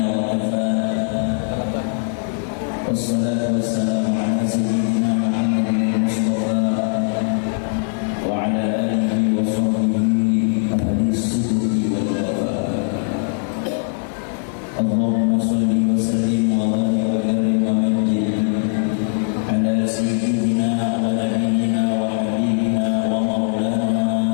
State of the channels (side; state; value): right; silent; 58 dB below the other